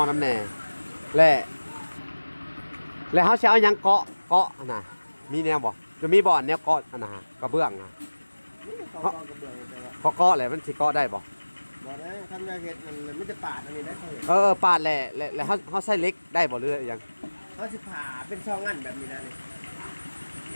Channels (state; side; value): inverted; both; correlation -1.00